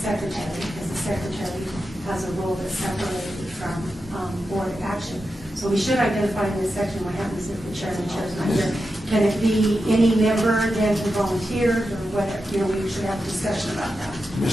because the secretary has a role that's separated from board action. So we should identify in this section what happens if the chair and the chair is not here. Can it be any member then who volunteered, or whatever? You know, we should have a discussion about that.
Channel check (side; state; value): both; normal; correlation 0.89